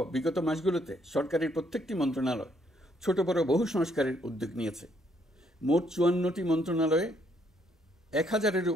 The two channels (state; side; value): normal; both; correlation 0.70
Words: বিগত মাসগুলোতে সরকারের প্রত্যেকটি মন্ত্রণালয় ছোট বড় বহু সংস্কারের উদ্যোগ নিয়েছে। মোট 54টি মন্ত্রণালয়ে 1000-এর